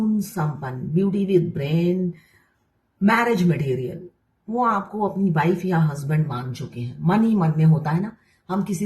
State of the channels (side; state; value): both; identical; correlation 1.00